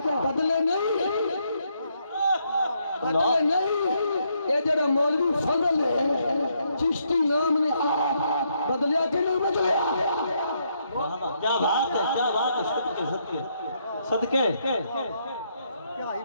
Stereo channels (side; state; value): both; inverted; correlation -0.75